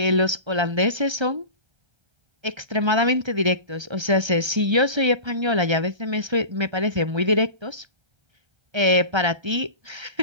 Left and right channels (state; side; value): late; left; 1.3 ms